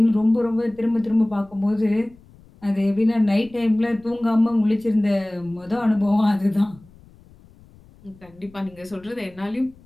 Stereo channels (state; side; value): noise; left; rumble, 26 dB below the sound